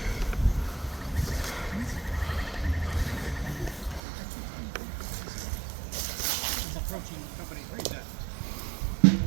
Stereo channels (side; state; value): left; drops out; at 4.0 s